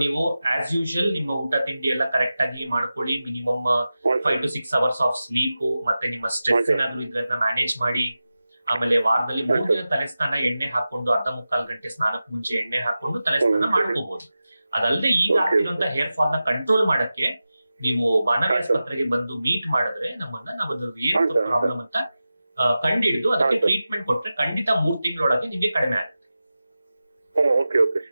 ನೀವು ಆಸ್ ಯೂಶುವಲ್ ನಿಮ್ಮ ಊಟ ತಿಂಡಿ ಎಲ್ಲ ಕರೆಕ್ಟ್ ಆಗಿ ಮಾಡ್ಕೊಳ್ಳಿ. Minimum 5 to 6 hours of sleep, ಮತ್ತೆ ನಿಮ್ಮ ಸ್ಟ್ರೆಸ್ ಏನಾದ್ರು ಇದ್ರೆ ಮ್ಯಾನೇಜ್ ಮಾಡಿ. ಆಮೇಲೆ ವಾರದಲ್ಲಿ 3 ದಿನ ತಲೆ ಸ್ನಾನ ಎಣ್ಣೆ ಹಾಕೊಂಡು, ಅರ್ಧ ಮುಕ್ಕಾಲು ಗಂಟೆ ಸ್ನಾನಕ್ಕೆ ಮುಂಚೆ ಎಣ್ಣೆ ಹಾಕೊಂಡು ತಲೆ ಸ್ನಾನ ಮಾಡ್ಕೋಬಹುದು. ಅದಲ್ಲದೆ ಈಗ ಆಗ್ತಿರೋಂತ ಹೇರ್ ಫಾಲ್ ನ ಕಂಟ್ರೋಲ್ ಮಾಡಕ್ಕೆ ನೀವು ಬಾನವಿ ಆಸ್ಪತ್ರೆಗೆ ಬಂದು ಮೀಟ್ ಮಾಡಿದ್ರೆ ನಾವು ಏನ್ ಪ್ರಾಬ್ಲಮ್ ಅಂತ ಕಂಡಿಡಿದು ಅದಕ್ಕೆ ಟ್ರೀಟ್ಮೆಂಟ್ ಕೊಟ್ರೆ ಖಂಡಿತ 3 ತಿಂಗಳೊಳಗೆ ನಿಮ್ಗೆ ಕಡಿಮೆ ಆಗುತ್ತೆ.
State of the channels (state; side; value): inverted; both; correlation -0.94